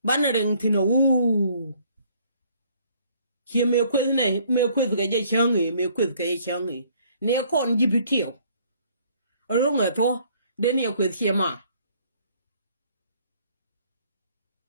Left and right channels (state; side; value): inverted; both; correlation -0.61